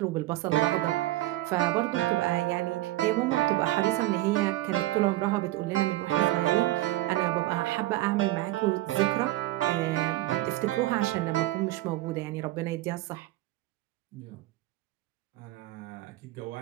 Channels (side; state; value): left; quieter; 16.8 dB